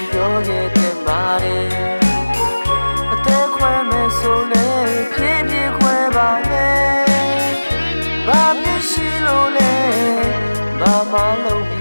ပြောခဲ့တဲ့မာရီအသက်ခွဲမယ်ဆိုလည်းဖြည်းဖြည်းခွဲပါနဲ့ဘာမြင်ရှိလို့လဲဘာမှလုံးပြီ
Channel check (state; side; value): inverted; both; correlation -1.00